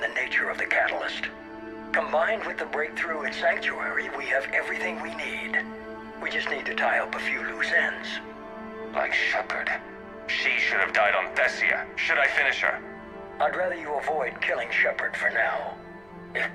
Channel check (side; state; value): left; noise; rumble, 27 dB below the sound